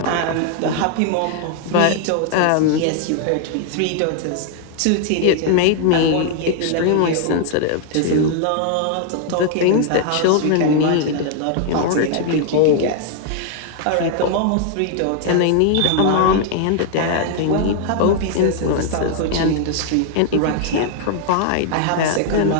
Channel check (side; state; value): both; different; correlation 0.00